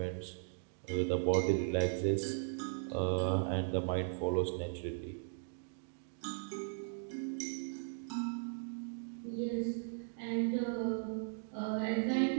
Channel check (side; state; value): left; silent; digital silence